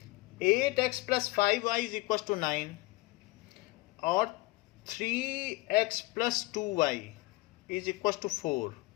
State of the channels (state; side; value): quieter; right; 21.4 dB